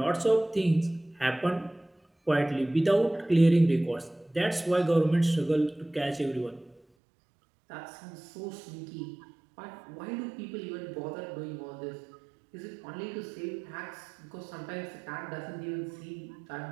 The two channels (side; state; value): left; drops out; at 6.8 s